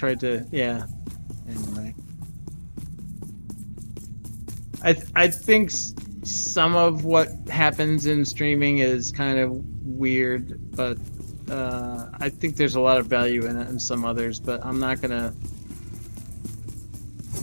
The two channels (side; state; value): both; inverted; correlation -1.00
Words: to, yeah. Anyway. I think some of what happens in streaming is kind of weird, but I think there's a lot of value in it and some others, but I'm not gonna